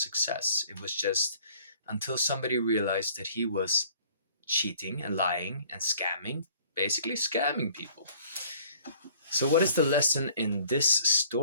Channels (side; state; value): both; inverted; correlation -0.55